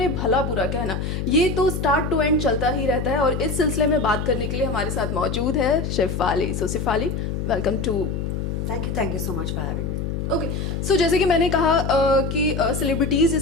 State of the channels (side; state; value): left; noise; hum, 3 dB below the sound